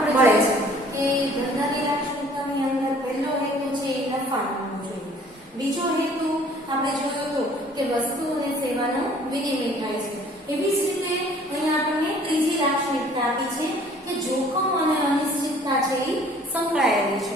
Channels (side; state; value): both; normal; correlation 0.54